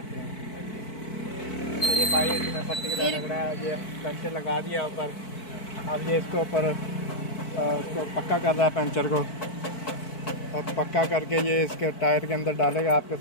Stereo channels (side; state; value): right; late; 4.6 ms